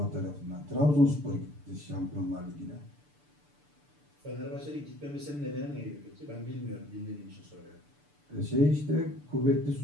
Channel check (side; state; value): left; late; 6.8 ms